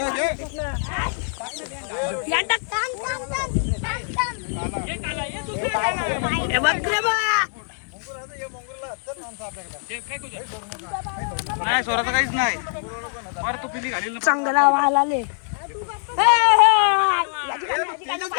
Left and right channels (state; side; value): silent; right; digital silence